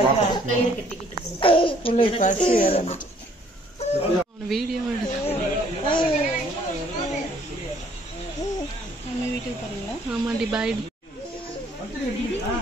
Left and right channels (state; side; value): normal; both; correlation 0.61